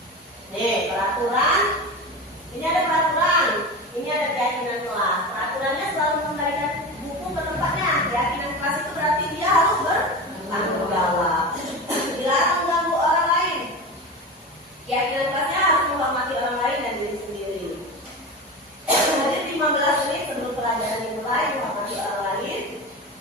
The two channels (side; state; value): both; normal; correlation 0.26